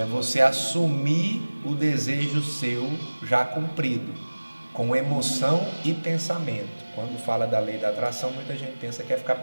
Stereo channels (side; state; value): both; inverted; correlation -1.00